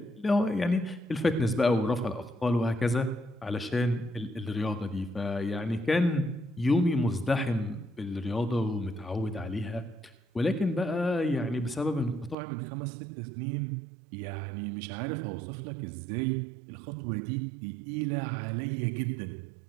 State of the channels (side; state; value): left; drops out; at 12.4 s